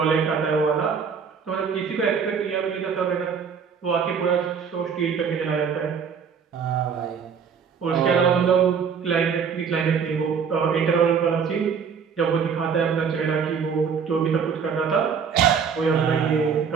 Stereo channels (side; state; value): left; quieter; 6.5 dB